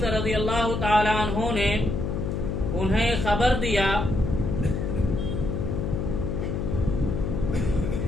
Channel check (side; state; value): left; noise; hum, 2 dB below the sound